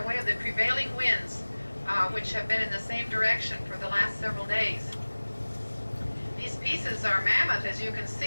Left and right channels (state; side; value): inverted; both; correlation -1.00